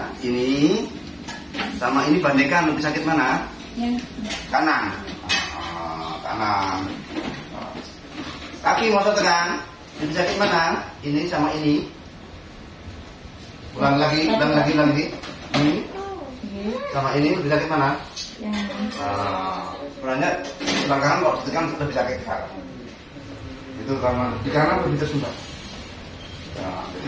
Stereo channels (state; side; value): identical; both; correlation 1.00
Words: Ini sama ini bandingkan lebih sakit mana? Kanan. Kanan. Kaki mau saya tekan lebih sakit mana? Ini sama ini. Ulang lagi. Ini sama ini lebih sakit mana? Sebenarnya belakang kok ditekan lebih sakit ke kanan. Itu karena di kanan lebih tersumbat. Nah, Jadi